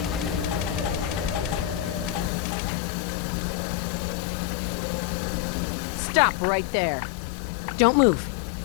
Stop right there. Don't move.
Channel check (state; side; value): drops out; right; at 2.3 s